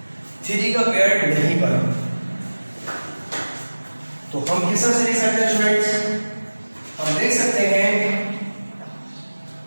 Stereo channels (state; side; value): inverted; both; correlation -1.00